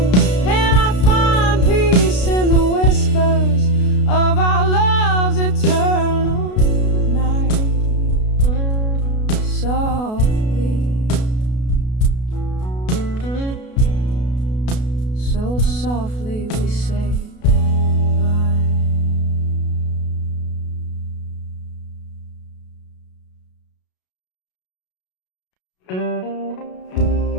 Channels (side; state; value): right; late; 33 ms